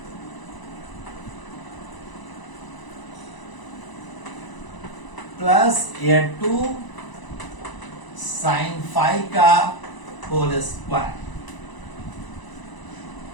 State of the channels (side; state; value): right; late; 1.0 ms